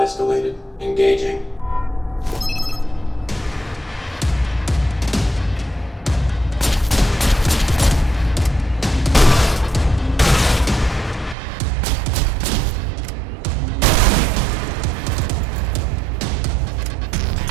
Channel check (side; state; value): left; drops out; at 11.4 s